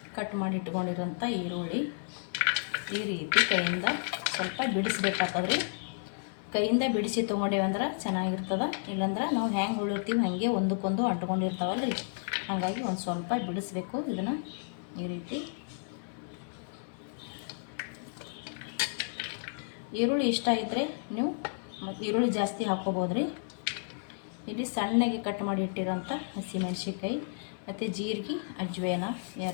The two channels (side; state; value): right; silent; 56 dB below the other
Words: ಕಟ್ ಮಾಡಿ ಇಟ್ಕೊಂಡಿರೋಂಥ ಈರುಳ್ಳಿ ಈ ರೀತಿ ಕೈಯಿಂದ ಸ್ವಲ್ಪ ಬಿಡಿಸ್ಬೇಕಾಗ್ತದ್ರಿ. ಕೈಯಿಂದ ಬಿಡಿಸಿ ತೊಗೊಂಡೇವಂದ್ರೆ ಚೆನ್ನಾಗಿರ್ತದೆ. ಇಲ್ಲಾಂದ್ರೆ ನಾವು ಹೆಂಗೆ ಉಳಿರ್ತೀವಿ ಹಾಗೆ ಒಂದಕ್ಕೊಂದು ಅಂಟ್ಕೊಂಡಿರ್ತಾವಲ್ರಿ. ಹಾಗಾಗಿ ಒಂದು ಸ್ವಲ್ಪ ಬಿಡಿಸ್ಬೇಕು. ಇದನ್ನು ಈ ರೀತಿ ಈರುಳ್ಳಿ ಇಷ್ಟ ಇದ್ದರೆ ನೀವು ಈರುಳ್ಳಿ ಜಾಸ್ತಿ ಹಾಕ್ಕೋಬೋದ್ರಿ. ಇಲ್ಲಿ ಸಣ್ಣಗೆ ಕಟ್ ಮಾಡಿ ಇಟ್ಟಿರೋಂಥ ಹಸಿಮೆಣ್ಸಿನ್ಕಾಯಿ ಮತ್ತು ಜೀರಿಗೆ, ಅಜ್ವೇನ